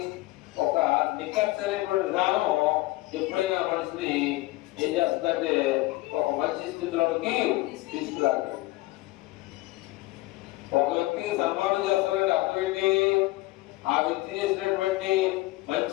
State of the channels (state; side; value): quieter; right; 19.7 dB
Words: ఒక నిక్కచ్చైనటువంటి విధానం ఎప్పుడైనా మనిషిని ఏం చేస్తుందంటే ఒక మంచి స్థితిలోకి తీసుకురాదు. ఒక వ్యక్తికి సన్మానం చేస్తారంటే అర్థం ఏంటి? ఆ వ్యక్తి చేసినటువంటి